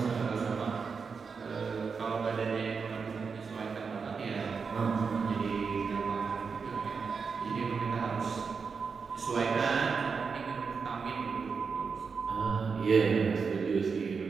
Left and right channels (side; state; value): left; quieter; 5.4 dB